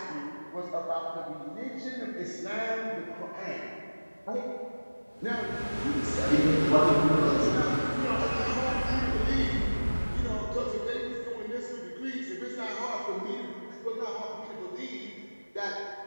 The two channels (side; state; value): both; inverted; correlation -1.00